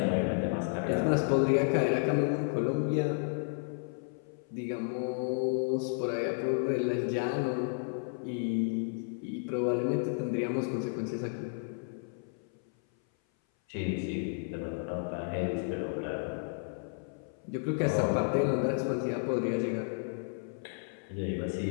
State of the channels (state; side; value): silent; right; 56 dB below the other